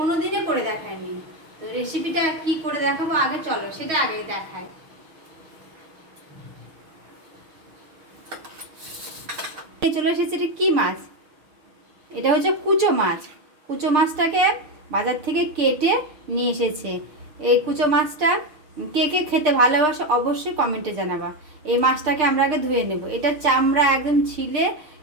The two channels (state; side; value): late; left; 6.6 ms